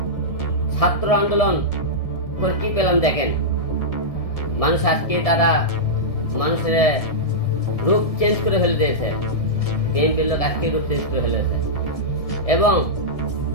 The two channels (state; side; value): late; right; 1.7 ms